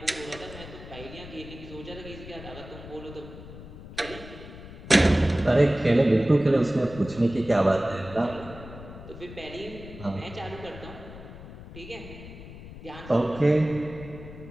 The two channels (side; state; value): left; noise; rumble, 14 dB below the sound